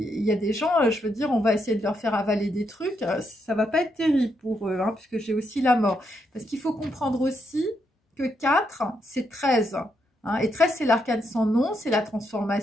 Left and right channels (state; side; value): normal; both; correlation 0.79